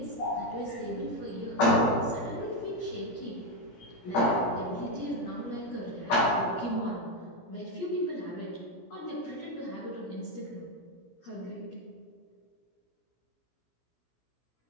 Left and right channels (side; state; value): right; late; 17 ms